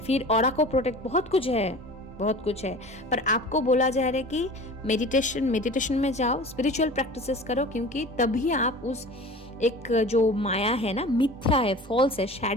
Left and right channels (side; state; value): both; normal; correlation 0.39